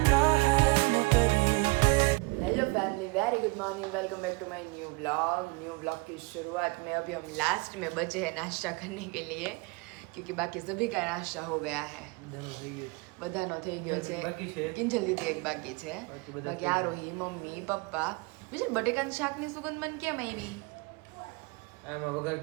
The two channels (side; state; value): left; quieter; 27.2 dB